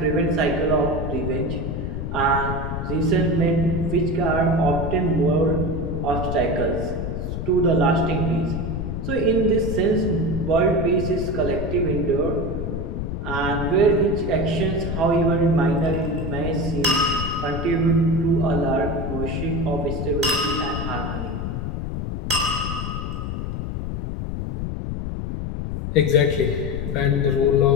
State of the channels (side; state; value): left; noise; rumble, 4 dB below the sound